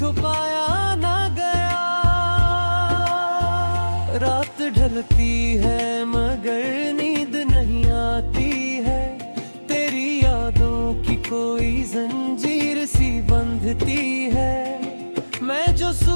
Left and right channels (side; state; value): both; inverted; correlation -1.00